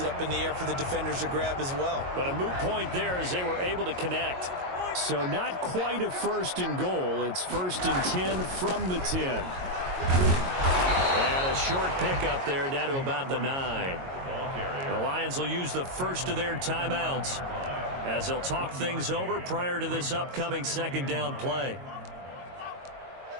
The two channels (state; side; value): late; left; 22 ms